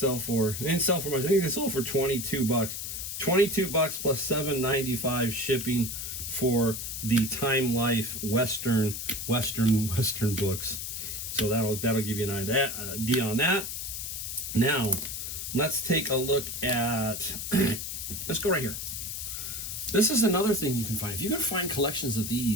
for? They didn't sell for much. I think they sold for $22. $22 plus $7.95 shipping for the Time Life Western books. So that'll give you an idea on that. Now, let's take a look at. Let's go right here. This is another thing you can find. If you can find collections of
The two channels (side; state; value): left; noise; hiss, 5 dB below the sound